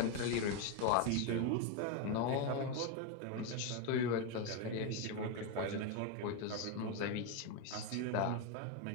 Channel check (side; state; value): both; different; correlation 0.02